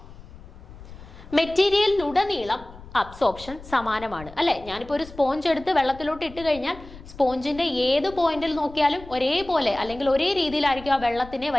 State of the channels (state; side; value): noise; left; rumble, 17 dB below the sound